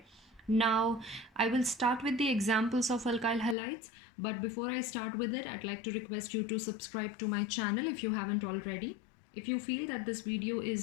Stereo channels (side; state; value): right; drops out; at 3.6 s